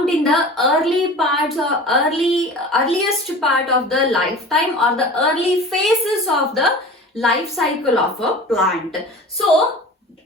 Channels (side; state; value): both; normal; correlation 0.38